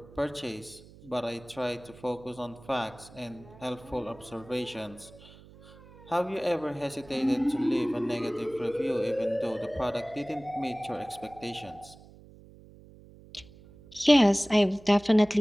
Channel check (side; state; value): right; noise; hum, 21 dB below the sound